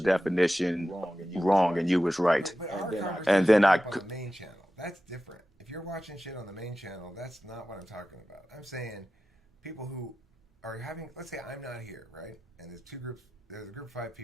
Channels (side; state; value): both; normal; correlation 0.93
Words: wrong and you was right. But our And conversation then came I, up on the main channel. That's different. If you're watching shit on the main channel, that's not what I'm talking about. I'm saying people who are having, let's say I'm not here, right? And there's two groups, there's a group of five